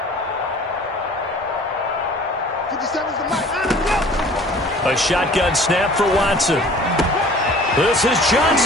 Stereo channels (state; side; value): normal; both; correlation 0.48